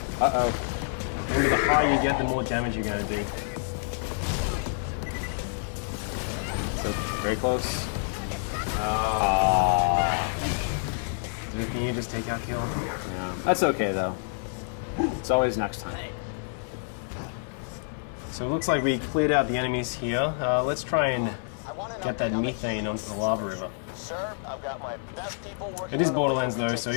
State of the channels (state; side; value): silent; right; 56 dB below the other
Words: Uh-oh. Remember, the higher you get, the more damage you're going to do. So, very close. Can you just take out kill? Yeah. That's okay, though. It's always next time. So it looks like we cleared out the enemies here. Let's try and get that methane onto the lava river. Sir, I've got my best people working. It is Borderlands though, so